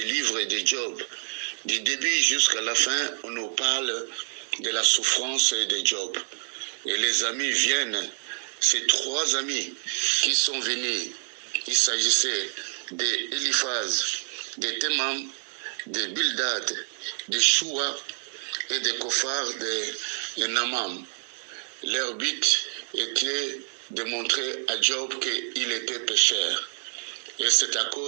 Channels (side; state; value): left; silent; digital silence